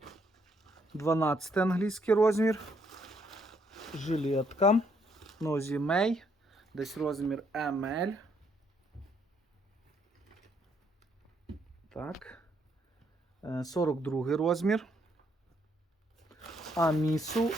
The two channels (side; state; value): both; normal; correlation 0.71